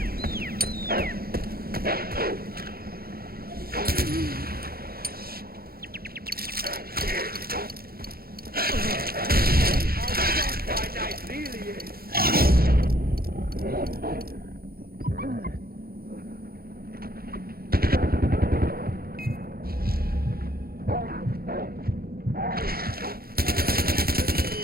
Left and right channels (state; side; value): late; left; 0.44 ms